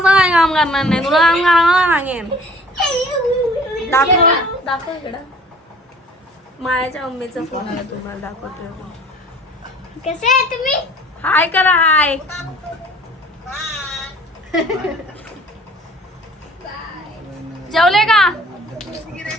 काम करणार नाही, तुला काम करायला सांगेन. दाखव इकडं. मायाच्या मम्मीचा फोन आला, तुम्हाला दाखवतोय. कसे आहे तुम्ही? हाय करा, हाय. जेवले का?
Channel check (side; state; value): both; normal; correlation 0.50